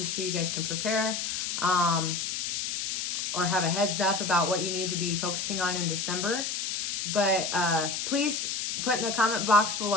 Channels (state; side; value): noise; left; hiss, 2 dB below the sound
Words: so you guys can prepare or have a heads up about what you need to be focusing on in December. But please put in the comment box